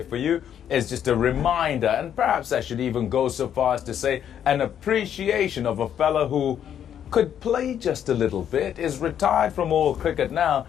for you is just a reminder, and perhaps I should even go so far as to say an appreciation of a fella who could play just a little bit, is retired from all cricket now,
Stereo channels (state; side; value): quieter; right; 9.4 dB